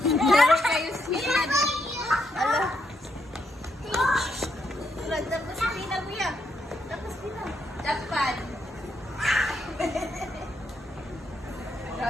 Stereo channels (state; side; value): normal; both; correlation 0.78